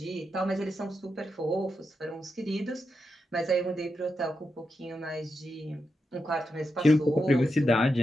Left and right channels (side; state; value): both; normal; correlation 0.86